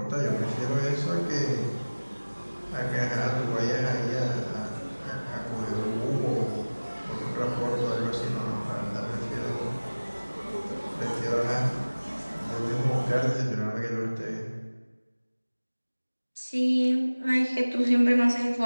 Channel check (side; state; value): both; inverted; correlation -1.00